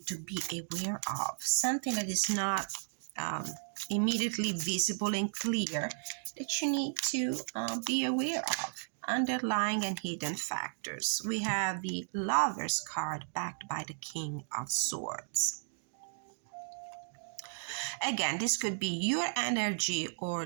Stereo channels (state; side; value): silent; left; digital silence